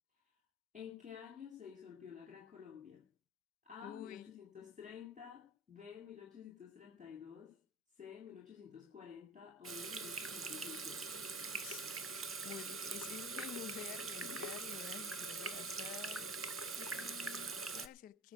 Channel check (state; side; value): normal; both; correlation 0.37